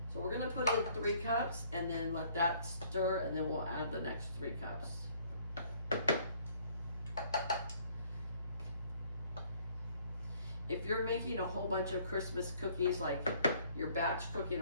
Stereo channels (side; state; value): both; inverted; correlation -0.60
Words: So we're gonna put in 3 cups and then let that stir, and then we'll add the next 3 cups. If you're making a whole bunch of Christmas cookies, like you're batch cooking